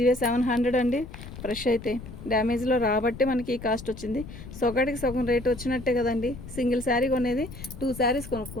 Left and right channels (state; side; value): noise; left; rumble, 13 dB below the sound